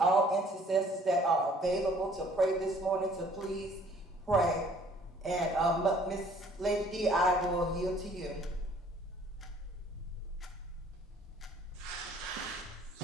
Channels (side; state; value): both; normal; correlation 0.57